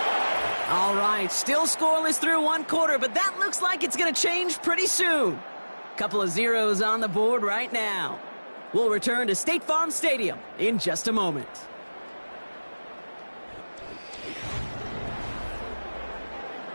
All right, still scoreless through 1 quarter, but that looks like it's going to change pretty soon. Couple of zeros on the board right now. We'll return to State Farm Stadium in just a moment.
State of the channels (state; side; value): inverted; both; correlation -1.00